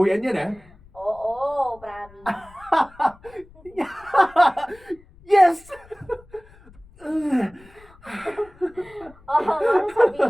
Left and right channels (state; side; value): noise; left; rumble, 25 dB below the sound